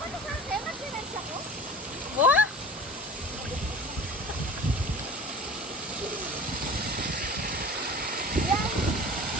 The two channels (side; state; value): both; normal; correlation 0.40